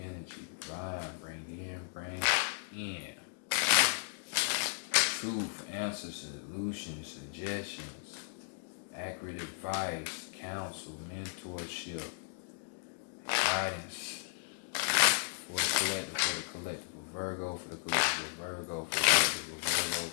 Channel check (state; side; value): silent; right; digital silence